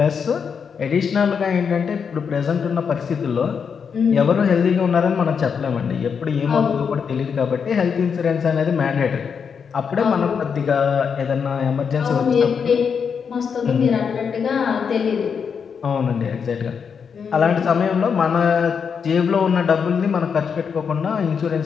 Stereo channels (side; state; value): right; quieter; 6.5 dB